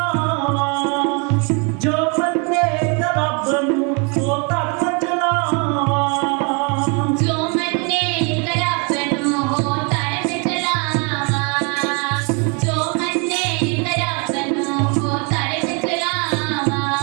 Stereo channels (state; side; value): quieter; left; 34.2 dB